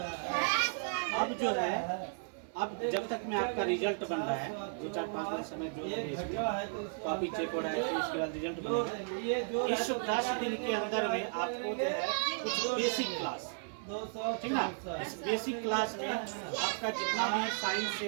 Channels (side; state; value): left; silent; digital silence